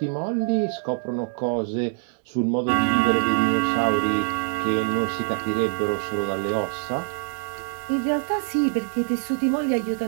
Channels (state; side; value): silent; left; digital silence